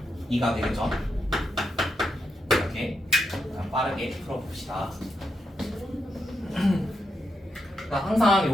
2가 되겠죠. 이렇게 빠르게 풀어봅시다. 그러니까 항상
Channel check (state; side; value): normal; both; correlation 0.83